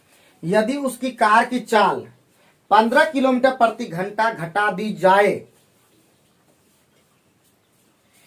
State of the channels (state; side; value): identical; both; correlation 1.00